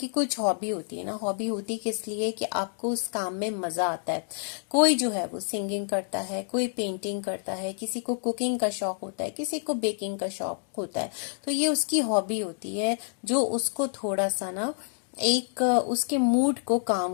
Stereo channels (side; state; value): right; silent; digital silence